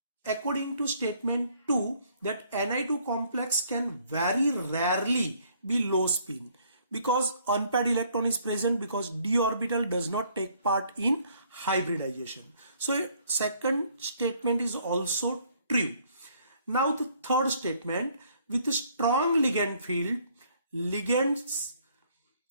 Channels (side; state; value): both; inverted; correlation -0.63